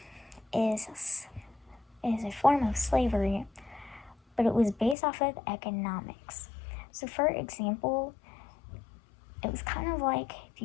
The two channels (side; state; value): right; drops out; at 5.0 s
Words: is a form of slavery, but it was based off of economics. So for example, it was kind of like, if